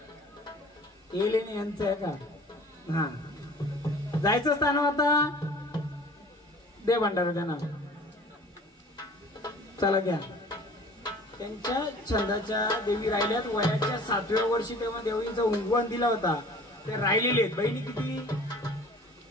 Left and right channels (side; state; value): both; normal; correlation 0.47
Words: हे लेणे यांचं आहे का? हा जायचं स्थान आता दे भंडारा त्यांना. चला घ्या. त्यांच्या छंदाच्या देवी राहिल्यात. वयाच्या 7व्या वर्षी तेव्हा देवींचा उंगवण दिला होता. ते राहिलेले आहेत. बहिणी किती?